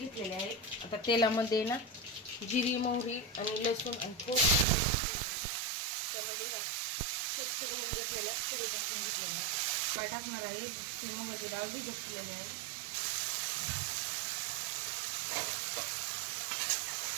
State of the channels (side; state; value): left; drops out; at 4.7 s